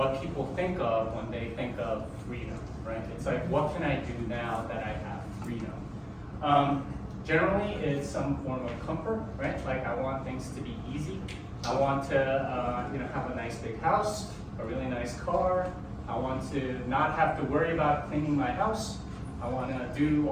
people think of when they think of freedom, right? It's like, what can I do now that I have freedom? Generally, it's some form of comfort, right? Like I want things to be easy. I want to, have a nice big house, a really nice car. I want to not have to worry about cleaning my house. I want to do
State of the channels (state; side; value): identical; both; correlation 1.00